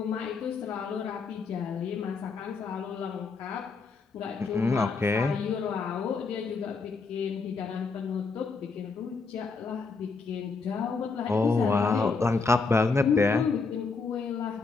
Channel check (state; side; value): quieter; right; 4.5 dB